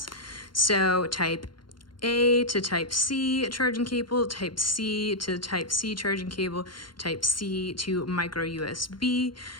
So type A to type C charging cable, type C to type C charging cable, type C to micro USB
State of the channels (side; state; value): right; late; 0.72 ms